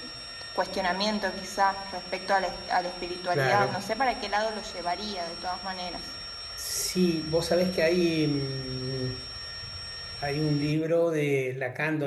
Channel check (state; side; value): identical; both; correlation 1.00